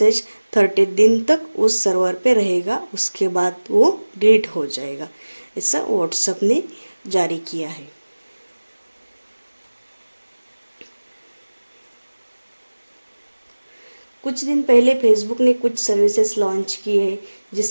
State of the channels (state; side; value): inverted; both; correlation -1.00